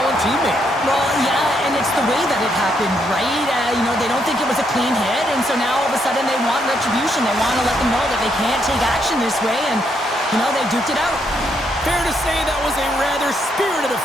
teammate. Well, yeah, and it's the way that it happened, right? They don't think it was a clean hit, and so now all of a sudden they want retribution. They want to let them know that they can't take action this way, and, they duked it out. Fair to say that was a rather spirited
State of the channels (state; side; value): normal; both; correlation 0.76